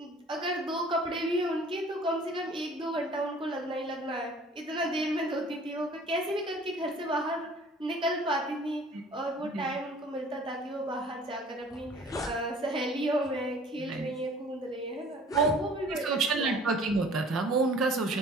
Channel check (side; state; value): both; normal; correlation 0.50